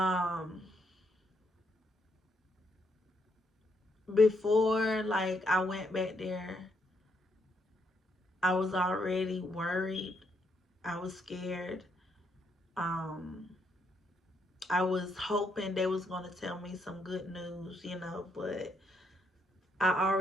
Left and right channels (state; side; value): normal; both; correlation 0.76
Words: Before like I went back there, I was already worried. I was scared. Um I was hoping they was going to tell me some good news, but I